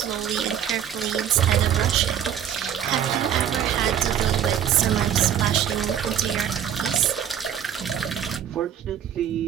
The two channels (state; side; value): quieter; left; 9.4 dB